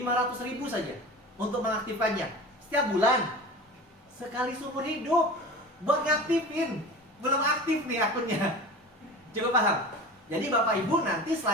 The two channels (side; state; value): both; normal; correlation 0.34